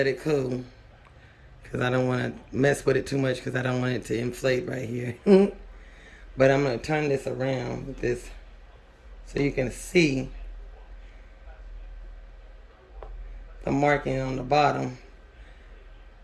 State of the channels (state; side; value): identical; both; correlation 1.00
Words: it cool. Because I don't want to mess with it too much because I don't want it to inflate right here. But I'm going to turn this around with this so you can see the marking on the bottom.